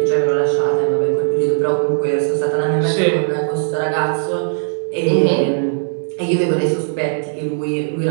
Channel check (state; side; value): silent; left; digital silence